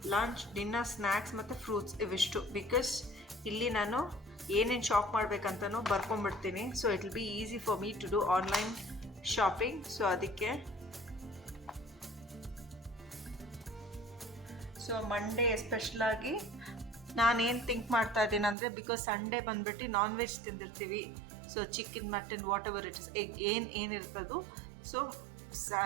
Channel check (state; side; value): drops out; left; at 18.6 s